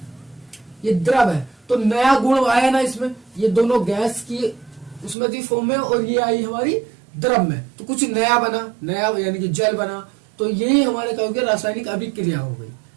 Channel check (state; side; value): drops out; left; at 5.2 s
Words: ये द्रव है। तो नया गुण आया ना इसमें, ये दोनों गैस की उसमें थी फॉर्म में, और ये आई हमारी द्रव में, तो कुछ नया बना, नया यानी कि जल बना। तो यही हमारे कहोगे रासायनिक अभिक्रिया हो गई।